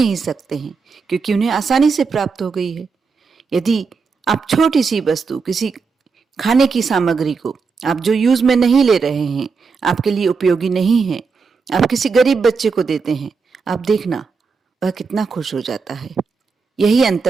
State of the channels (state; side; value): quieter; left; 5.0 dB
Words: सकते हैं, क्योंकि उन्हें आसानी से प्राप्त हो गई है। यदि आप छोटी सी वस्तु, किसी खाने की सामग्री को आप जो यूज में नहीं ले रहे हैं, आपके लिए उपयोगी नहीं है, आप किसी गरीब बच्चे को देते हैं, आप देखना वह कितना खुश हो जाता है। यही